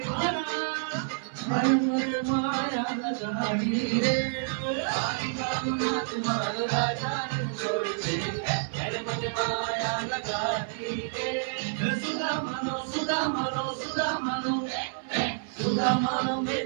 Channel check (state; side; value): silent; left; 59 dB below the other